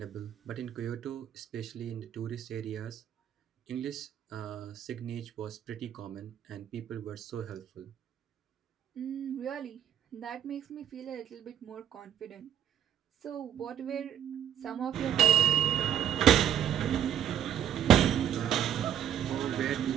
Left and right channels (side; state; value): left; quieter; 9.9 dB